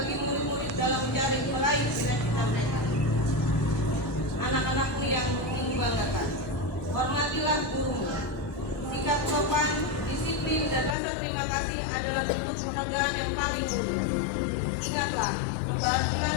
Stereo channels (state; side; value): drops out; right; at 11.0 s